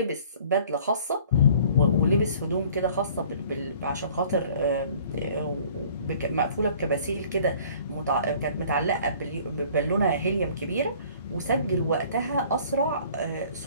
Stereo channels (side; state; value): both; inverted; correlation -0.52